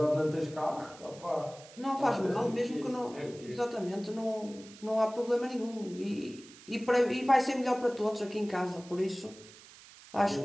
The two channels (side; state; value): right; noise; hiss, 20 dB below the sound